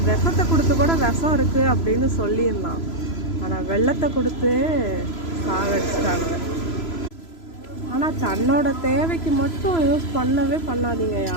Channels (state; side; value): late; right; 3.0 ms